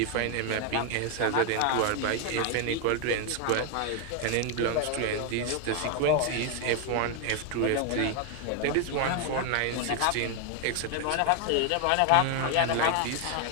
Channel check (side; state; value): both; different; correlation 0.01